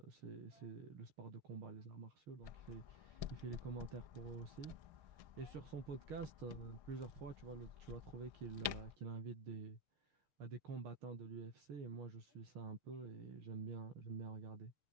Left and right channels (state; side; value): late; left; 6.5 ms